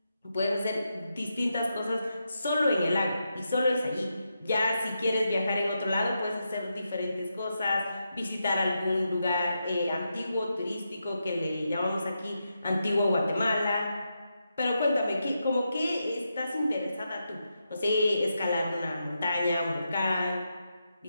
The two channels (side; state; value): both; inverted; correlation -0.85